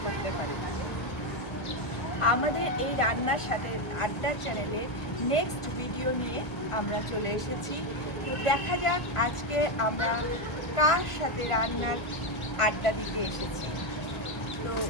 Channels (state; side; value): late; right; 1.4 ms